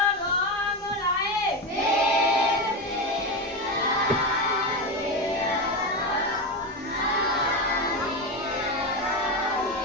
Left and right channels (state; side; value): normal; both; correlation 0.16